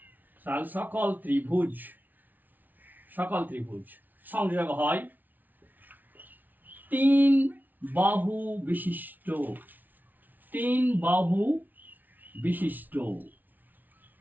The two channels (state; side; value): late; left; 0.082 ms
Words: সকল ত্রিভুজ, সকল ত্রিভুজ সংযোগ হয় তিন বাহু বিশিষ্ট, তিন বাহু বিশিষ্ট